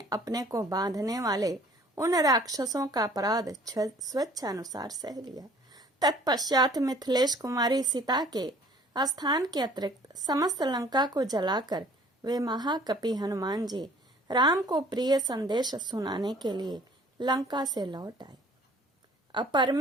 अपने को बांधने वाले उन राक्षसों का अपराध स्वेच्छानुसार सह लिया. तत्पश्चात मिथिलेश कुमारी सीता के स्थान के अतिरिक्त समस्त लंका को जलाकर वे महाकपि हनुमान जी राम को प्रिय संदेश सुनाने के लिए लंका से लौट आए.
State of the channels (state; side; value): normal; both; correlation 0.53